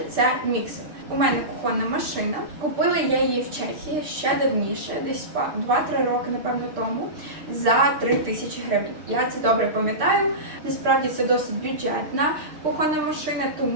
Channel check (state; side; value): late; left; 6.6 ms